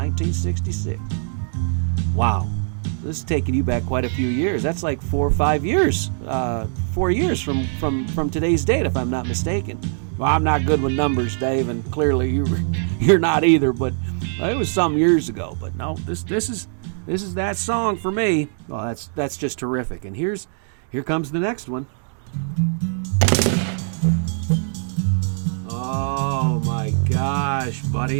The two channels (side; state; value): left; silent; digital silence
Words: Wow, this is taking you back quite a few years. That's like 4 or 5 years. 4 years from today's date, if I'm not mistaken. Well, I'm not good with numbers, Dave, and clearly you're not either. But it was some years ago. But no, this is that song for me. Well, that's just terrific. And here comes the next one. Oh my gosh,